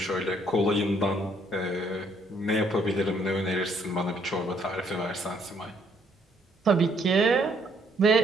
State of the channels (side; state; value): both; normal; correlation 0.67